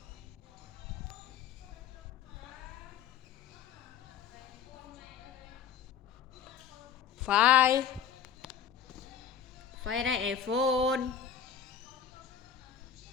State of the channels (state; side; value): quieter; right; 8.1 dB